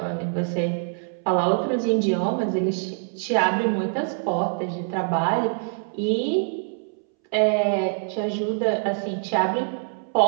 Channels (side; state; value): left; silent; 62 dB below the other